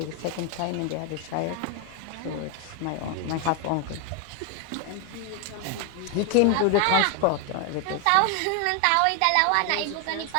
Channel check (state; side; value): different; both; correlation 0.01